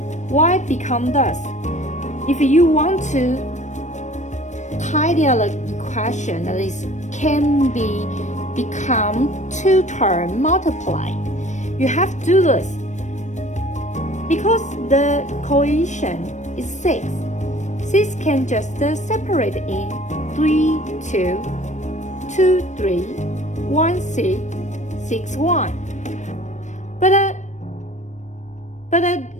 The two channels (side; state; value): right; late; 0.35 ms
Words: Y become this. If you want to tidy up the equation, that is can become two term multiply. You have to do this because the coefficient is 6. 6 can just separate in 3, 2, 2, 3, 1, 6, 6, 1. But